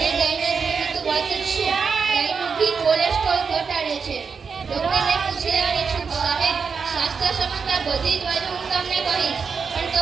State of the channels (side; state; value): left; quieter; 5.6 dB